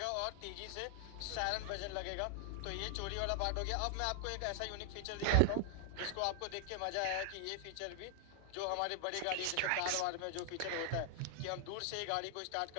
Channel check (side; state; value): both; different; correlation 0.00